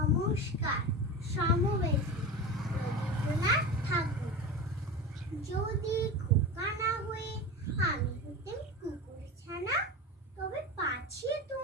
নমস্কার সমবেশী রবীন্দ্রনাথ ঠাকুর। যদি খোকা না হয়ে আমি হতেন কুকুর ছানা, তবে পাছে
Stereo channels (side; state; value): both; normal; correlation 0.27